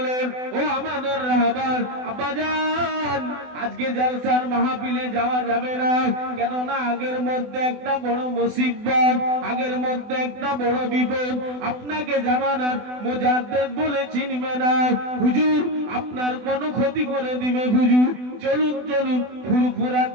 ও আমাদের রাহবার আব্বাজান, আজকে জলসার মাহফিলে যাওয়া যাবে না, কেননা আগের মধ্যে একটা বড় মুসিবত, আগের মধ্যে একটা বড় বিপদ, আপনাকে জামানার মুজাদ্দিদ বলে চিনবে না হুজুর, আপনার কোনো ক্ষতি করে দিবে হুজুর, চলুন চলুন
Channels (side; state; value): left; late; 24 ms